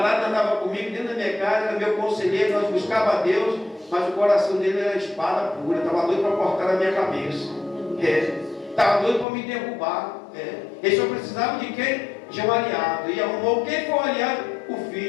andava comigo dentro da minha casa, era meu conselheiro, nós buscávamos a Deus, mas o coração dele era espada pura, estava doido para cortar a minha cabeça. Estava doido para me derrubar. Ele só precisava de quem? De um aliado. E arrumou quem foi o aliado? O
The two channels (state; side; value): drops out; right; at 9.2 s